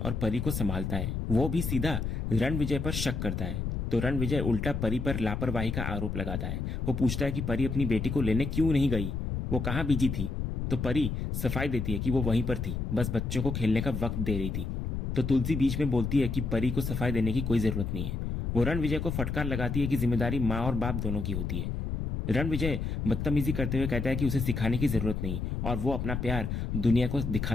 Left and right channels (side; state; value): left; noise; rumble, 2 dB below the sound